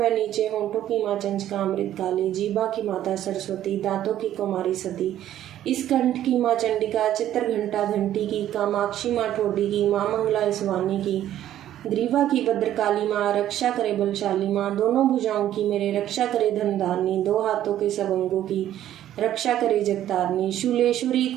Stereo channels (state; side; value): quieter; left; 12.0 dB